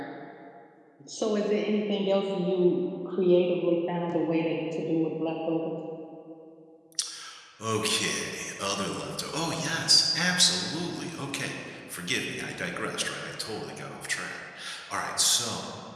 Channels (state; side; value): identical; both; correlation 1.00